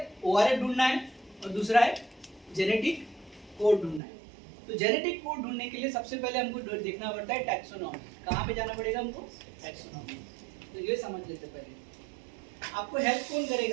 ओआरएफ ढूंढना है और दूसरा है जेनेटिक कोड ढूंढना है। तो जेनेटिक कोड ढूंढने के लिए सबसे पहले हमको देखना पड़ता है टैक्सोनॉमी। कहाँ पे जाना पड़ेगा हमको? टैक्सोनॉमी। तो ये समझ लेते पहले। आपको हेल्प कौन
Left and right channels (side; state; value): left; drops out; at 4.0 s